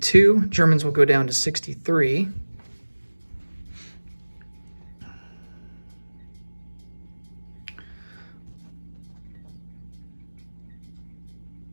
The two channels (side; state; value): both; inverted; correlation -1.00